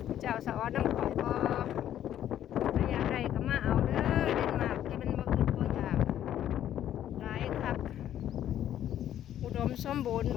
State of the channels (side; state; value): right; quieter; 11.2 dB